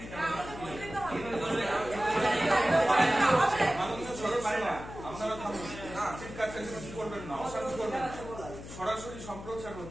আপনারা থামুন, চিৎকার চেঁচামেচি করবেন না, অশান্তি করবেন না। সরাসরি সম্প্রচার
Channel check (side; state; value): left; noise; hum, 12 dB below the sound